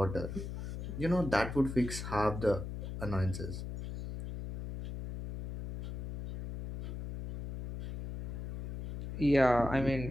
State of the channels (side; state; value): left; noise; hum, 6 dB below the sound